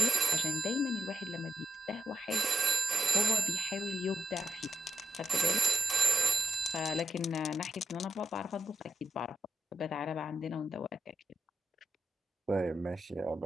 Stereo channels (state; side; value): normal; both; correlation 0.86